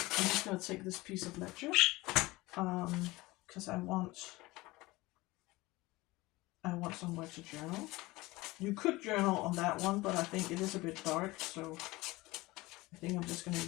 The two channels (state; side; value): quieter; right; 20.7 dB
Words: I'm just gonna take this piece of ledger because I want somewhere to journal. You could journal on that one, but I think it is a bit dark, so I think I'm just gonna